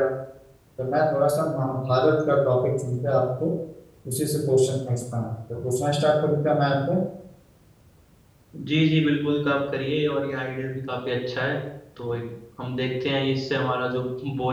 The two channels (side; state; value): both; identical; correlation 1.00